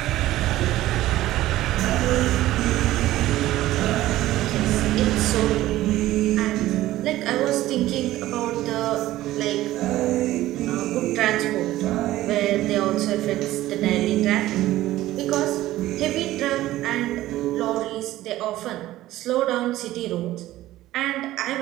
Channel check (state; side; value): quieter; left; 15.4 dB